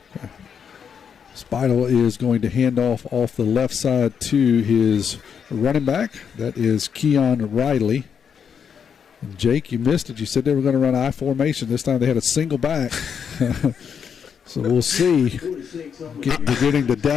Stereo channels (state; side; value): quieter; right; 7.2 dB